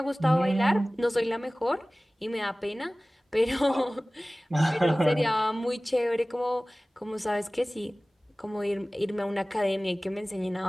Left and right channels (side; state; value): both; normal; correlation 0.98